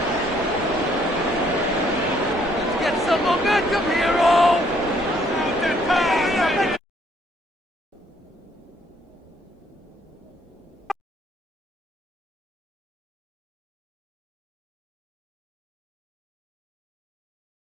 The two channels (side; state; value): both; normal; correlation 0.66